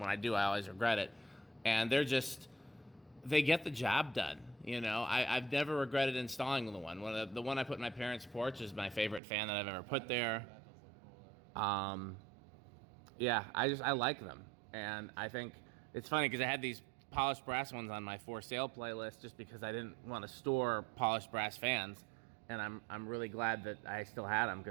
I do, I always regret it. And they get the job done. You know, I've never regretted installing the one. The one I put in my parents' porch is my favorite fan that I've ever put there. That does look cool there. Yeah, I like them, and I think it's funny because I had these polished brass ones on my for sale playlist just because I didn't want to store polished brass fans, and I'm really glad that I still had them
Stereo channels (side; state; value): left; drops out; at 9.2 s